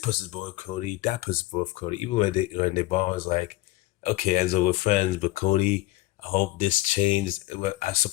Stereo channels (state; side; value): quieter; right; 18.3 dB